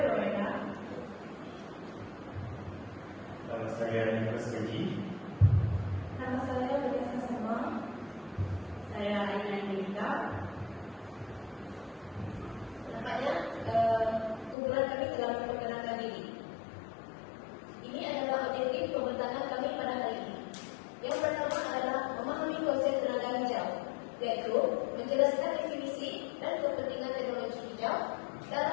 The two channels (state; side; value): drops out; right; at 14.6 s